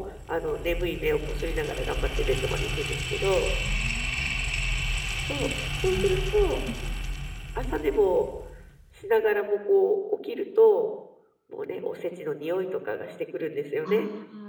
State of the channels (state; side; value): identical; both; correlation 1.00